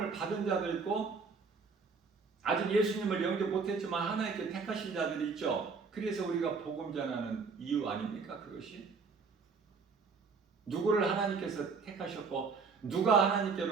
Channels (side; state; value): left; quieter; 4.9 dB